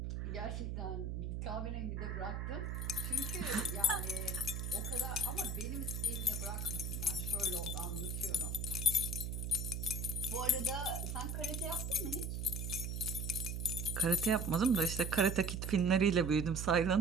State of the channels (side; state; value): right; noise; hum, 3 dB below the sound